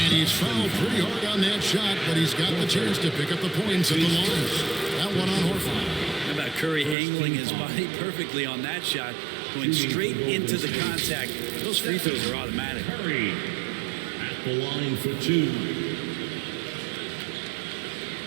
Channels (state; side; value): drops out; left; at 7.0 s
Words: he's fouled pretty hard on that shot, but he's got the chance to pick up the points at the line. That one on Horford. How about Curry angling his body perfectly on that shot, going straight into the contact. Those free throws are automatic. Curry at the line for 2.